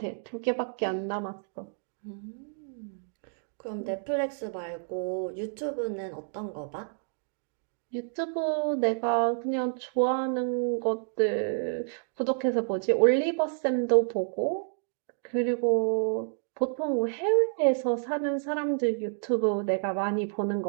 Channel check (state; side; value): silent; left; digital silence